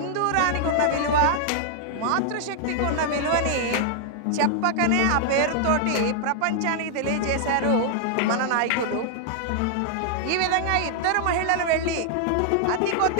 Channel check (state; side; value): different; both; correlation 0.00